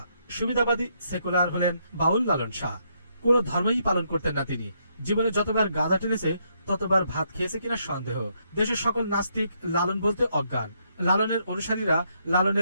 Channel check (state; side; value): inverted; both; correlation -0.75